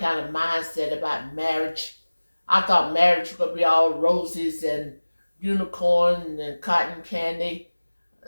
of mindset about marriage. I thought marriage was gonna be all roses and unicorn and cotton candy.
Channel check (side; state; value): both; inverted; correlation -1.00